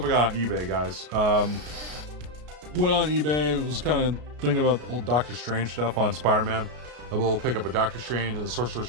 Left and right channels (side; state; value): left; late; 33 ms